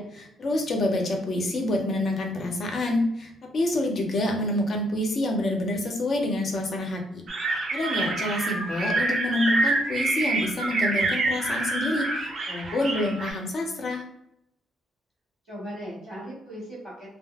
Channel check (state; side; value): normal; both; correlation 0.72